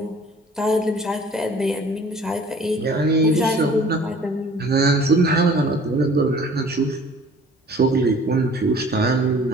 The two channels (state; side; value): normal; both; correlation 0.50